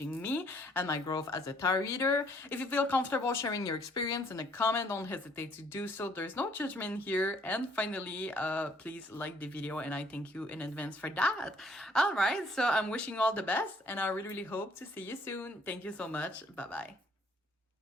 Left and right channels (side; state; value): both; normal; correlation 0.63